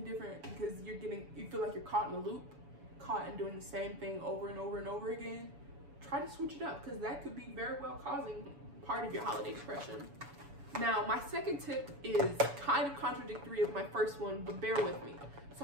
different because you feel like you're caught in a loop, caught in doing the same thing over and over and over again, try to switch it up, because that could be very well causing part of your holiday depression. Now, my second tip is kind of contradictory of my first one, but bear with me. So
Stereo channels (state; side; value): late; left; 7.0 ms